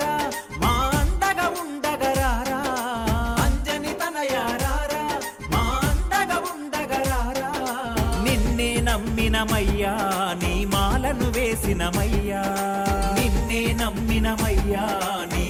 మా అండగా ఉండగరారా అంజని తనయారారా మా అండగా ఉండగరారా నిన్నే నమ్మినమయ్యా నీ మాలను వేసినమయ్యా నిన్నే నమ్మినమయ్యా నీ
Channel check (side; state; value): both; identical; correlation 1.00